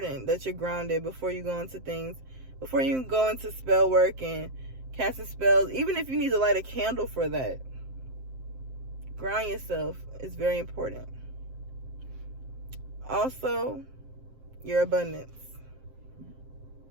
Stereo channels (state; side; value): late; left; 7.7 ms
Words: that you're grounded before you go into things. Before you go into spell work and casting spells, even if you need to light a candle for that. Ground yourself is very important. Also, your abundance.